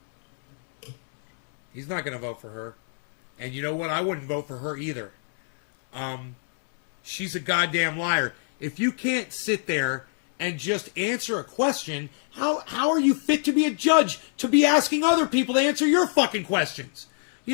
He's not going to vote for her. And you know what? I wouldn't vote for her either. She's a goddamn liar. If you can't sit there and just answer a question, how are you fit to be a judge to be asking other people to answer your fucking questions?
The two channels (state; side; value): silent; right; 62 dB below the other